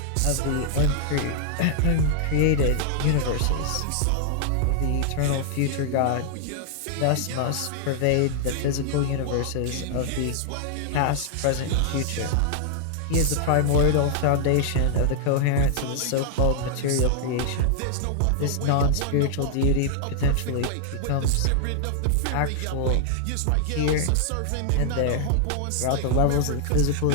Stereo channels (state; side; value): different; both; correlation -0.01